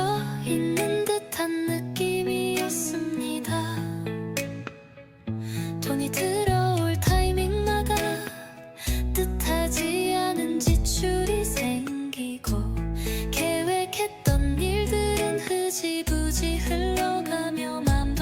듯한 느낌이었습니다. 돈이 들어올 타이밍마다 뜻하지 않은 지출이 생기고 계획했던 일들은 흐지부지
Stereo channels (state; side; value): identical; both; correlation 1.00